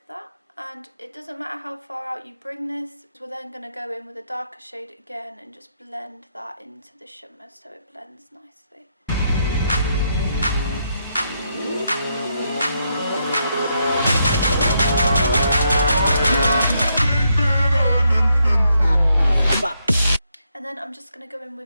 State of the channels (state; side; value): inverted; both; correlation -0.79